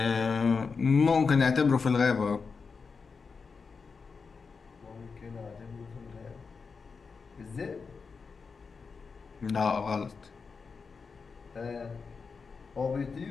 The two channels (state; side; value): quieter; right; 5.1 dB